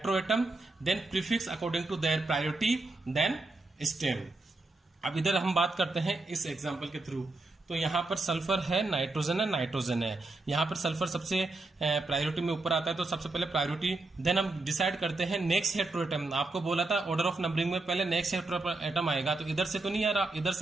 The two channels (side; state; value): left; quieter; 3.2 dB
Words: then prefix according to their priority, then stem. अब इधर हम बात करते हैं इस एग्जांपल के थ्रू। तो यहां पर सल्फर है, नाइट्रोजन है, यहां पर सल्फर सबसे प्रायोरिटी में ऊपर आता है, तो सबसे पहले प्रायोरिटी, देन हम डिसाइड करते हैं नेक्स्ट हेट्रोएटम। आपको बोला था ऑर्डर ऑफ नंबरिंग में पहले नेक्स्ट हेट्रोएटम आएगा, तो इधर से तो नहीं आ रहा, इधर